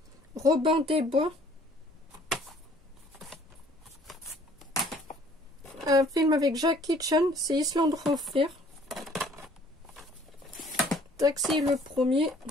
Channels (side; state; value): both; normal; correlation 0.57